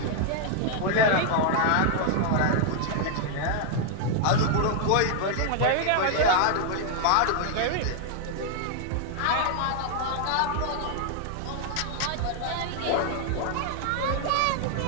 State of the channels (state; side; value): different; both; correlation 0.00